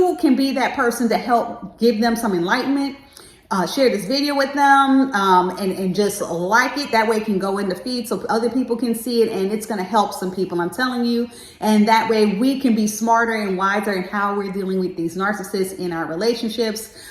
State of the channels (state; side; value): identical; both; correlation 1.00